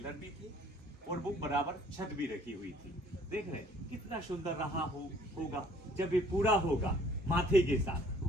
भी थे, और वो बराबर छत भी रखी हुई थी। देख रहे कितना सुंदर रहा होगा जब ये पूरा होगा माथे के साथ।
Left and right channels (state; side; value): normal; both; correlation 0.58